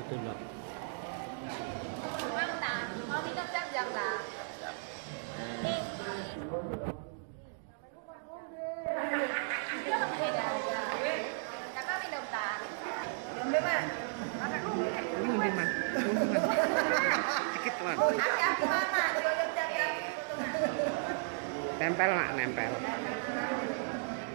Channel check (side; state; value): left; silent; digital silence